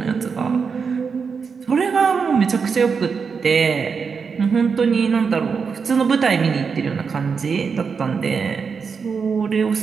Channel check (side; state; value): left; quieter; 5.7 dB